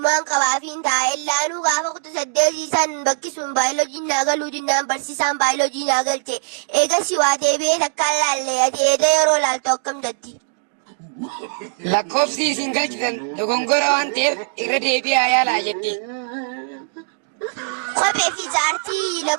qabaafiin taa'ellaanuu gaafa kutu saddeetiisan bakkisuun baayoloojiin naa galuu jinnaan barsiisaan baayoloojii naa galche. Eegasii waa deebi'ee takkaan laallee ati eeda yeroo laaltu akkam jetti? Lakkoofsi isin galchitan dogongora waan ta'eef irra deebi'aa yaalaa jetti. Kophee fi jaartii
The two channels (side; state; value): left; silent; digital silence